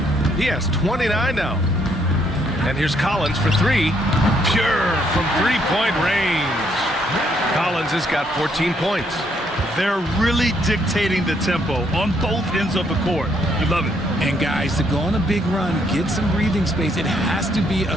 He has 29 now. And here's Collins for 3. Pure from 3-point range. Collins has got 14 points. They're really dictating the tempo on both ends of the court. You love it. And guys, to go on a big run, get some breathing space, it has to be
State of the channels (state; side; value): normal; both; correlation 0.71